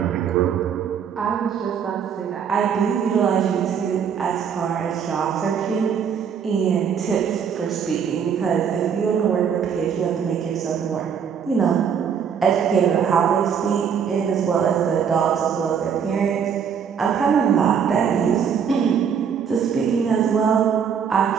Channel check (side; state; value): left; quieter; 7.4 dB